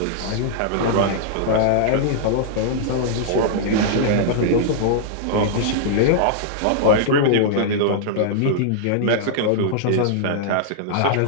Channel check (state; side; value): different; both; correlation -0.02